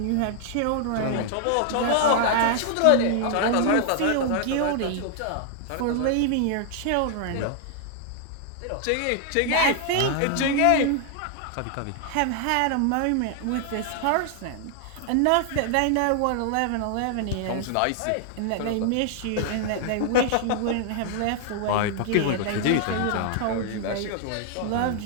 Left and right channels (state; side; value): different; both; correlation 0.00